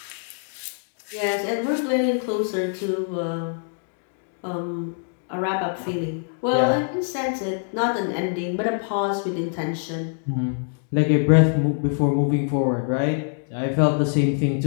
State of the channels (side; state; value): right; silent; digital silence